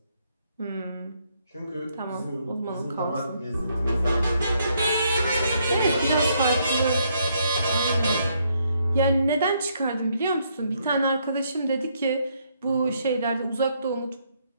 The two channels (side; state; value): both; inverted; correlation -0.73